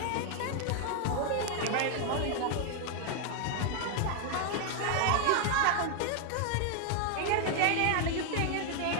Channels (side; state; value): both; different; correlation 0.00